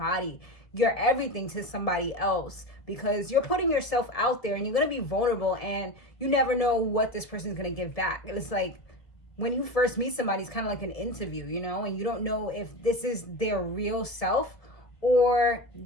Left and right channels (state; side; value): late; right; 1.5 ms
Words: your everything to somebody else, because you're putting yourself out there and you're going to be vulnerable, and you never know what this person is going to give back. It's like when you first meet somebody, it's kind of like an interview, and you don't know if this is their real self or